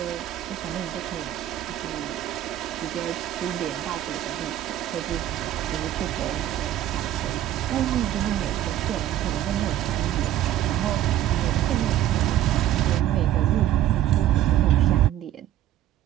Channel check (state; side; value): quieter; left; 12.4 dB